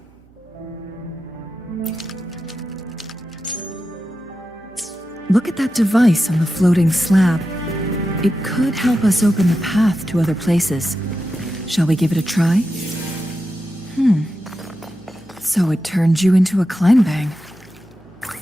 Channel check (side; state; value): right; noise; hum, 28 dB below the sound